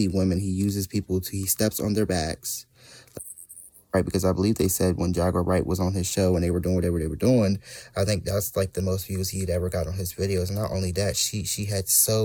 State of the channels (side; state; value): both; identical; correlation 1.00